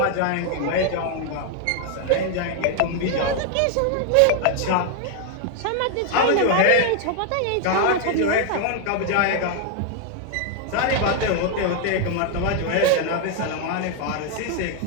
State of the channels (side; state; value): both; different; correlation 0.00